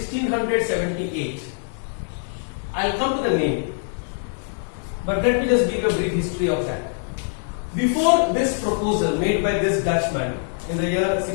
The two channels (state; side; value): silent; right; digital silence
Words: I'll come to the name, but let me just give a brief history of that. Before this proposal made by this Dutchman in the year